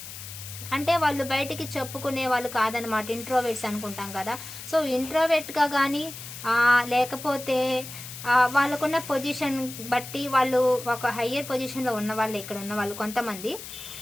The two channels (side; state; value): left; noise; hiss, 12 dB below the sound